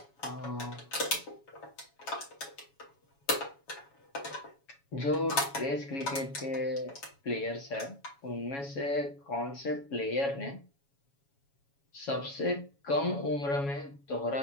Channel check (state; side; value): late; right; 7.2 ms